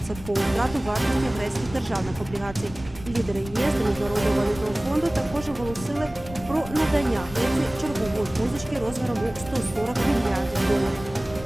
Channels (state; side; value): noise; left; rumble, 15 dB below the sound